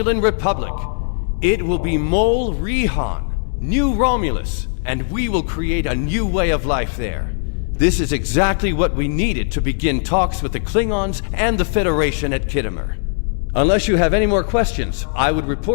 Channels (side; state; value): right; silent; 67 dB below the other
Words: Republic. It will be Mol Rihan, New Romulus, and we will create a new way of life there. This is exactly what we needed to begin talks with the Klingons and the Federation at Khitomer. Unless you have any more questions, I would